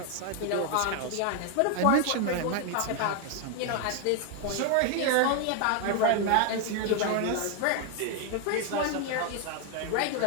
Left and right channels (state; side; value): different; both; correlation 0.01